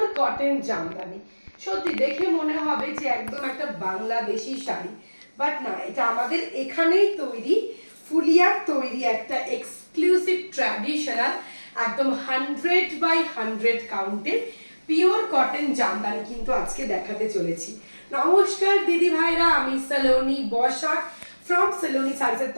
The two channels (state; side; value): inverted; both; correlation -1.00